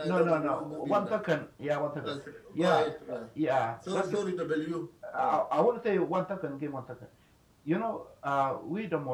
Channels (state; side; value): identical; both; correlation 1.00